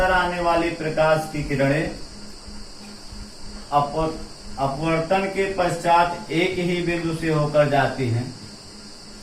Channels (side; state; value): both; identical; correlation 1.00